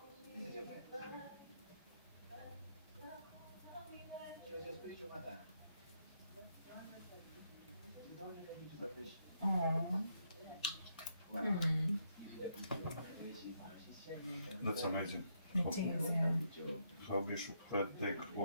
Oh. That's amazing. It is, yeah. How Bishop had take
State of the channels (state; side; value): inverted; both; correlation -0.76